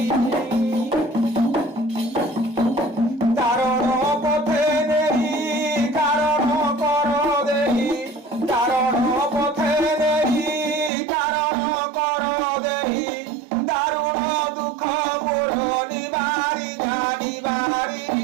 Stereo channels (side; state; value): left; drops out; at 10.9 s